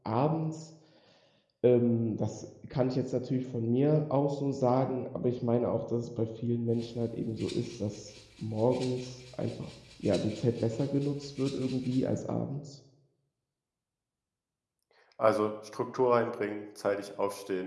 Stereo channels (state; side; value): identical; both; correlation 1.00